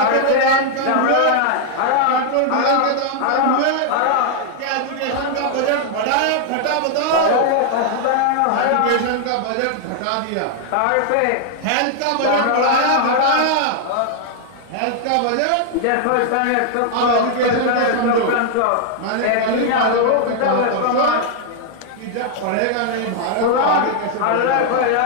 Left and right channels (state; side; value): different; both; correlation 0.00